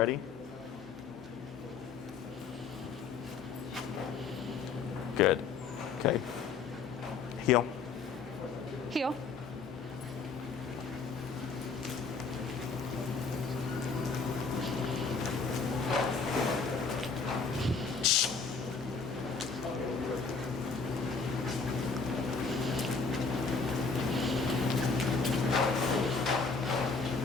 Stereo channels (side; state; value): right; quieter; 4.8 dB